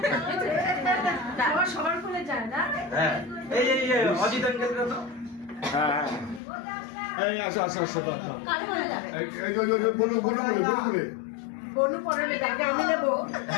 সবার কোলে যায় না। হ্যাঁ এই এই অজিত আঙ্কেল তো হ্যাঁ হ্যাঁ এই আসো আসো আসো কার কোলে যাবে? এই যে বলো বলো বলো বলো বনু পরে যাবে আমি দেব।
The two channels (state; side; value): drops out; right; at 6.4 s